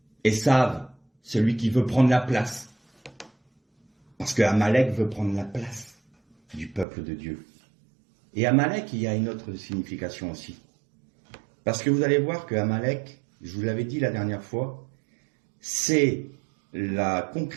Esav, celui qui veut prendre la place. Parce que Amalek veut prendre la place du peuple de Dieu. Et Amalek, il y a une autre signification aussi. Parce que vous allez voir que Amalek, je vous l'avais dit la dernière fois, c'est la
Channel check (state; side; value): drops out; left; at 6.9 s